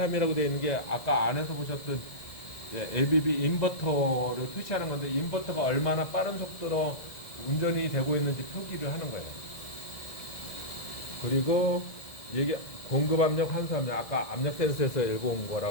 되어 있는 게 아까 안에서 보셨던 ABB 인버터를 표시하는 건데, 인버터가 얼마나 빠른 속도로 운전이 되고 있는지 표기를 하는 거예요. 그리고 이게 공급 압력, 환수 압력, 아까 압력 센서에서 읽어온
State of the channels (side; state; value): right; late; 1.7 ms